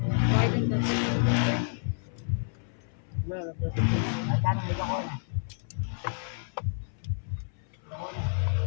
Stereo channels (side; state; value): right; silent; 58 dB below the other